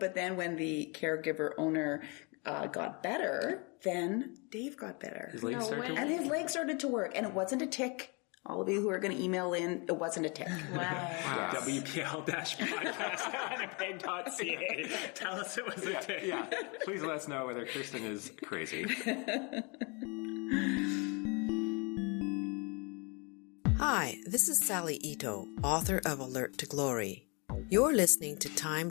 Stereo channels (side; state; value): right; quieter; 31.3 dB